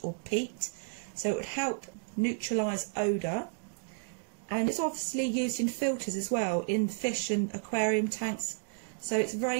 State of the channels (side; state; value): left; silent; digital silence